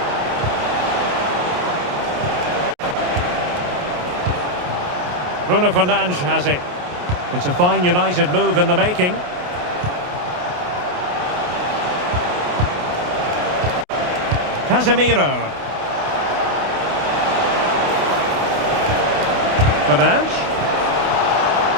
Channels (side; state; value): left; late; 28 ms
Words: Bruno Fernandes has it. It's a fine United move in the making. Casemiro. Fernandes.